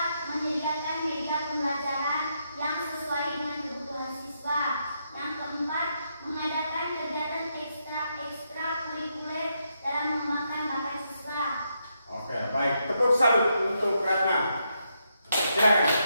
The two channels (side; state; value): both; inverted; correlation -0.80